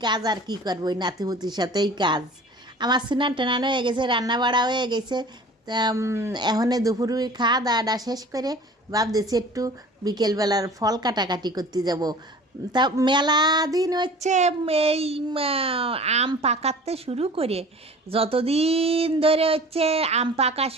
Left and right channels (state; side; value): normal; both; correlation 0.43